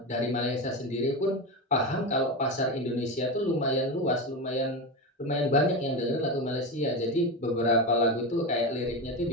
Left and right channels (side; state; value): both; normal; correlation 0.18